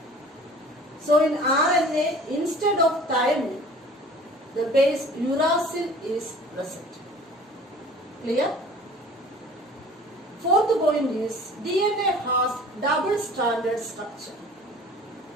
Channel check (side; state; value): both; normal; correlation 0.46